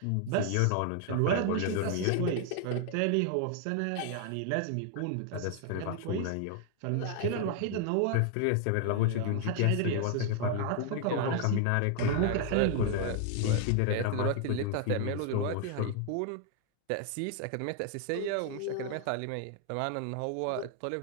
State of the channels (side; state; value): both; different; correlation 0.00